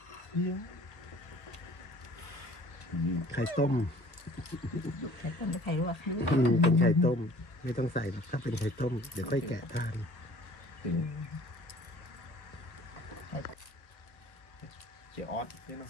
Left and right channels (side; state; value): right; late; 1.1 ms